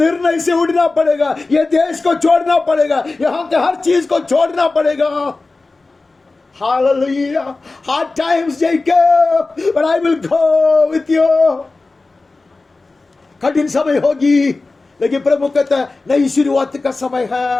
से उड़ना पड़ेगा. ये देश को छोड़ना पड़ेगा, यहाँ के हर चीज को छोड़ना पड़ेगा. Hallelujah. Hard times, Jacob, but I will go with you. कठिन समय होगी, लेकिन प्रभु कहता है नई शुरुआत का समय है.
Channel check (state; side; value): quieter; right; 3.5 dB